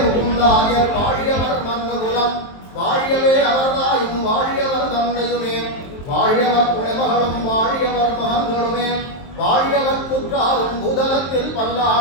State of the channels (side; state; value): right; late; 23 ms